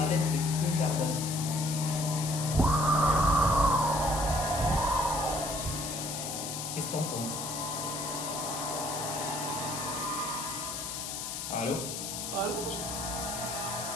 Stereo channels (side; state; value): left; noise; hiss, 5 dB below the sound